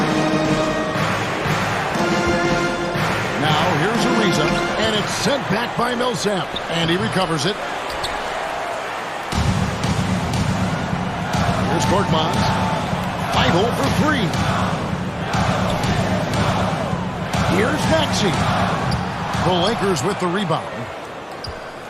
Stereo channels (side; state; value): both; identical; correlation 1.00